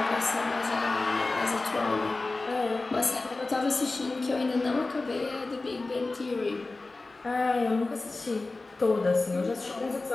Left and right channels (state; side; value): quieter; right; 3.4 dB